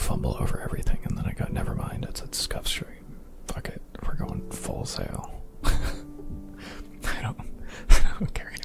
over everything, and then I go, never mind, it's a scuff stream. Fuck it, we're going full sail. I don't care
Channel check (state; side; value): identical; both; correlation 1.00